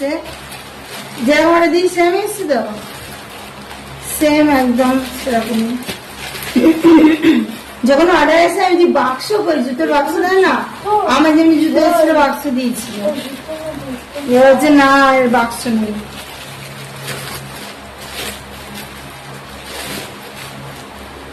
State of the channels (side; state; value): both; identical; correlation 1.00